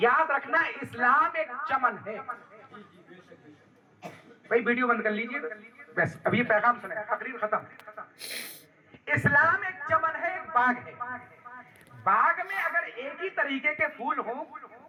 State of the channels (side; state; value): both; identical; correlation 1.00